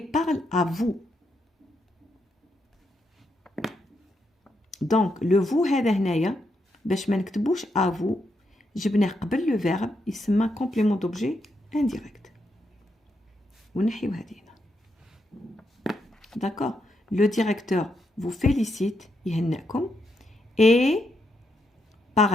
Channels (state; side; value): normal; both; correlation 0.81